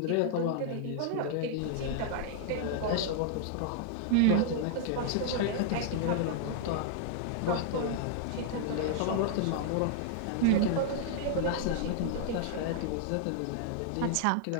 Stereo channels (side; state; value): both; different; correlation -0.01